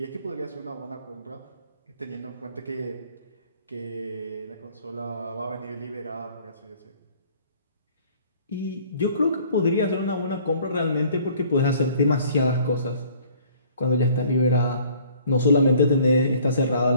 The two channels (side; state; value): both; inverted; correlation -0.55